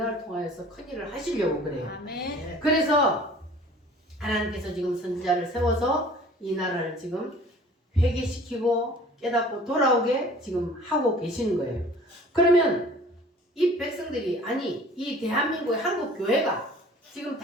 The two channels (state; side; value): normal; both; correlation 0.48